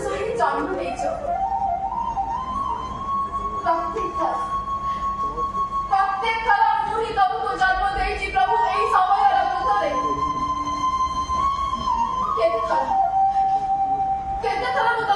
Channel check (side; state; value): both; identical; correlation 1.00